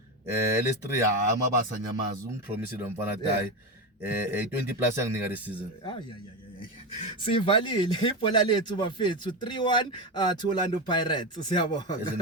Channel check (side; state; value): both; normal; correlation 0.16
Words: LS3 amabasa nyamazi umpromise lo mfana die 20 plus yanginika this season. Sivalile ibhola lethu bafethu 3-1 to Orlando Pirates. Siyabonga.